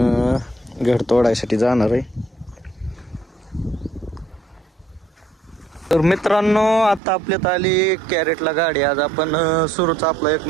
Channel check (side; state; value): left; drops out; at 7.0 s